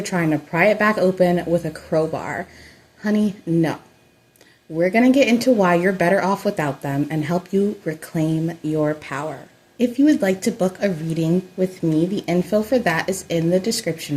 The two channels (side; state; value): both; identical; correlation 1.00